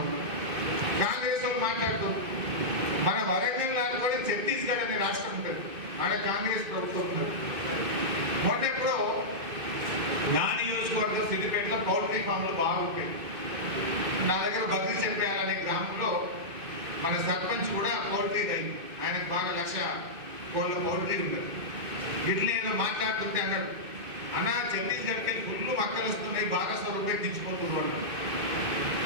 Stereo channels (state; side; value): late; left; 2.5 ms